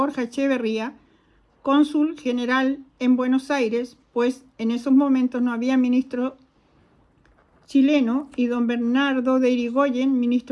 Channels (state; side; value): identical; both; correlation 1.00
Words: Echeverría, cónsul general en Buenos Aires, pues en esos momentos no había ministro chileno, y don Bernardo de Irigoyen,